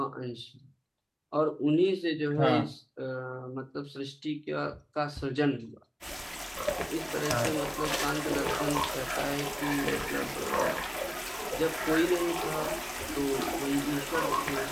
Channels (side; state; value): both; identical; correlation 1.00